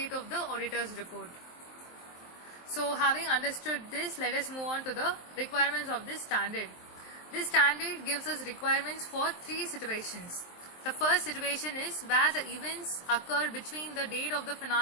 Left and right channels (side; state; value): right; late; 23 ms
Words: of the auditor's report. So having understood this, let us move on to the requirements of this standard. This standard gives us requirements for three situations. The first situation is where the events occur between the date of the